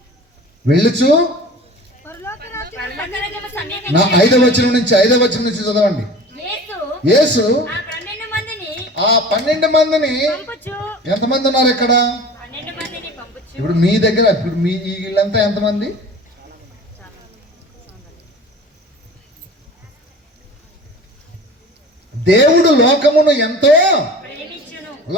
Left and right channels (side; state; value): both; normal; correlation 0.40